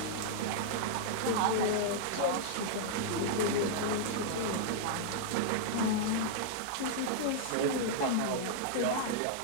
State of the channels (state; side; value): different; both; correlation -0.01